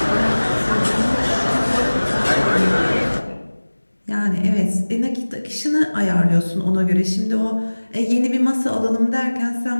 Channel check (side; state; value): both; inverted; correlation -1.00